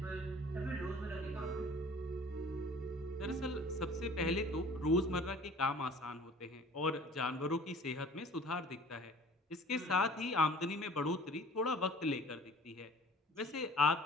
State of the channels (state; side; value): normal; both; correlation 0.48